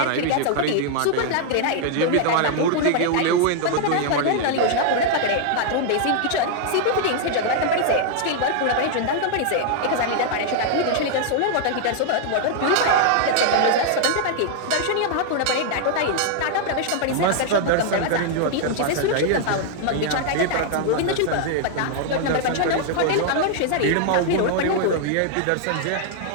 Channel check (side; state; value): both; different; correlation -0.01